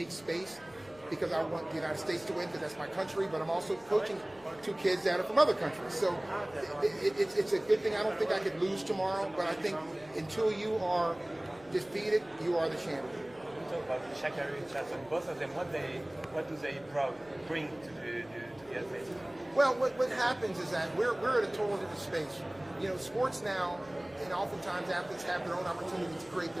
space because I want the United States to win because that's my country, but I'm also coaching two kids that are from other countries. So it's a good thing. I don't think I could lose tomorrow, but I think until you are defeated, you are the champion. We talk about Sha'Carri Richardson. Both of them, what do they bring to the athletes? Well, what happens is that we're at a total different space. You know, sports now, and oftentimes athletes have their own opportunity to create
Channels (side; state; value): left; noise; hum, 25 dB below the sound